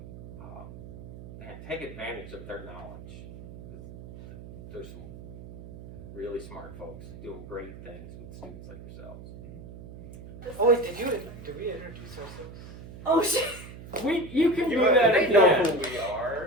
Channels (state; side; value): noise; right; hum, 14 dB below the sound